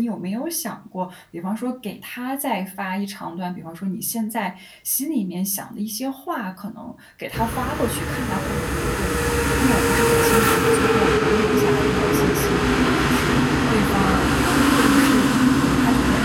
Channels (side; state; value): both; identical; correlation 1.00